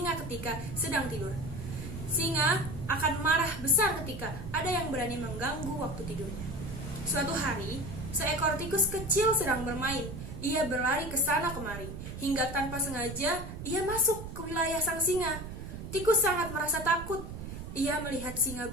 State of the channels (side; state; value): right; noise; rumble, 9 dB below the sound